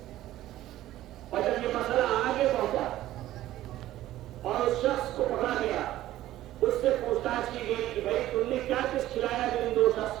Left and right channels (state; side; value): quieter; left; 14.4 dB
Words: اور جب یہ مسئلہ آگے پہنچا اور اس شخص کو پکڑا گیا، اس سے پوچھ تاچھ کی گئی کہ بھائی تم نے کیا کچھ کھلایا جو ان دو